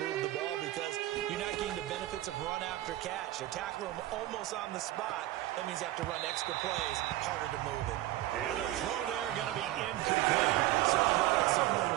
the ball because you're not getting the benefits of run after catch. They're tackling them almost on the spot. That means they have to run extra plays, harder to move it. Throw there going to be incomplete. Certainly looked like someone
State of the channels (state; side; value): quieter; left; 15.8 dB